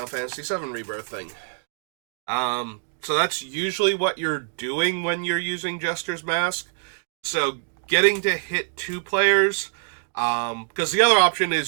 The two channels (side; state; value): left; silent; digital silence